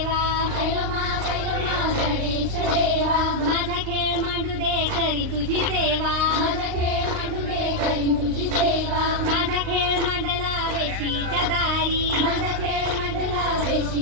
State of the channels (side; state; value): left; late; 38 ms